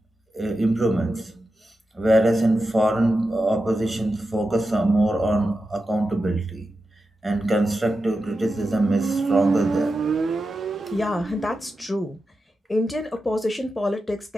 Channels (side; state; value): both; normal; correlation 0.90